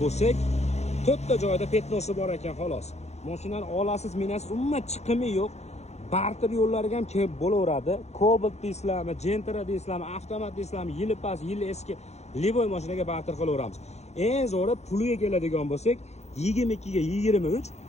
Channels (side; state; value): right; late; 0.32 ms